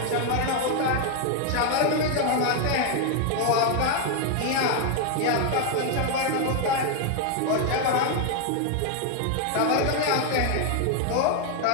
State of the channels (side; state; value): both; different; correlation 0.00